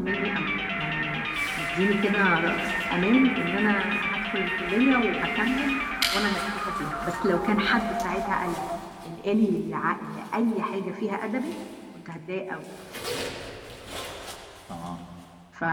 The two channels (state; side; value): identical; both; correlation 1.00